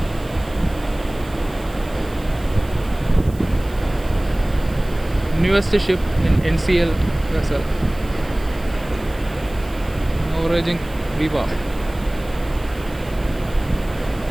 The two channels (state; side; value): noise; right; hiss, 23 dB below the sound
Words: Newest ship in NCL vessel. Norwegian Viva.